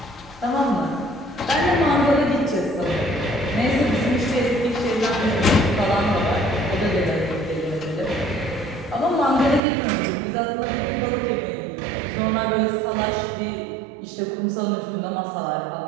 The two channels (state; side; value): drops out; left; at 9.6 s